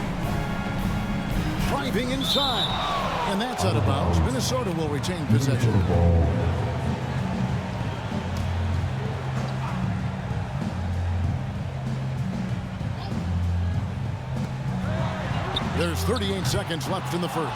Driving inside. And that's out of bounds. Minnesota will retain possession. There's 38 seconds left in the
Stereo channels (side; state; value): both; identical; correlation 1.00